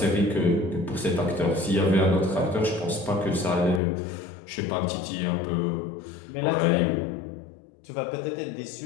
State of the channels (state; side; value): drops out; right; at 3.8 s